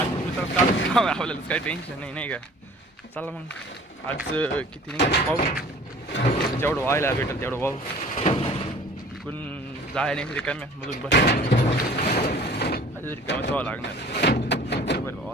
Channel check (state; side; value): normal; both; correlation 0.48